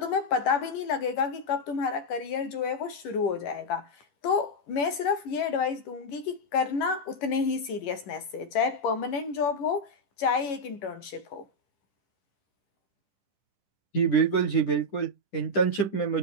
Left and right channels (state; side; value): late; right; 11 ms